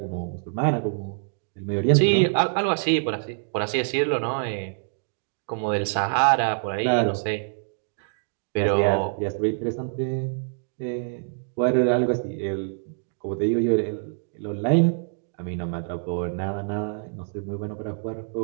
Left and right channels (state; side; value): silent; left; digital silence